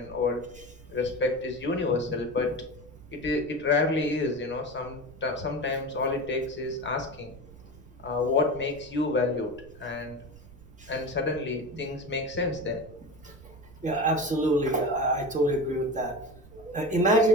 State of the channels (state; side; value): noise; right; rumble, 20 dB below the sound